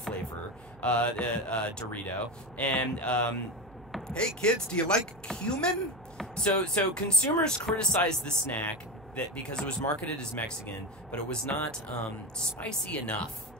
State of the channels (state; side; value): noise; right; hum, 24 dB below the sound